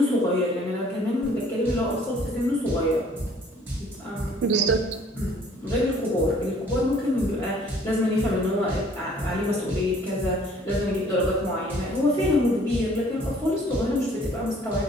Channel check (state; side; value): normal; both; correlation 0.57